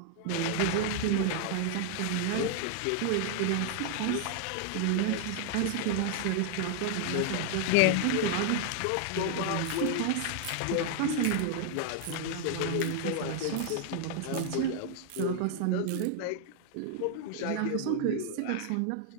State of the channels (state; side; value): different; both; correlation 0.00